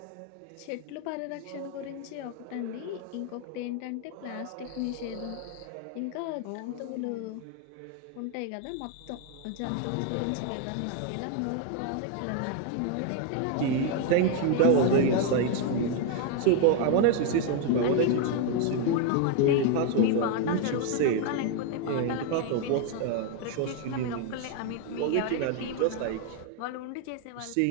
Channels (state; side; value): different; both; correlation 0.01